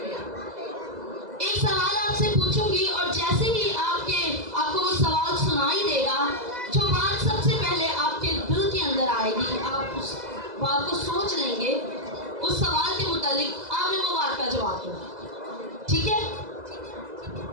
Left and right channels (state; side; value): late; left; 2.0 ms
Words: एक सवाल आपसे पूछूंगी और जैसे ही आपको वो सवाल सुनाई देगा, जो बात सबसे पहले आपके दिल के अंदर आएगी, आप उस बात को सोच लेंगे, उस सवाल के मुतालिक आपने वो बात का जवाब देना। ठीक है?